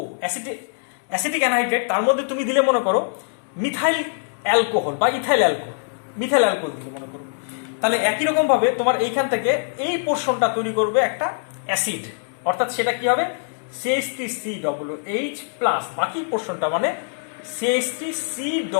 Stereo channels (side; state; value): right; silent; digital silence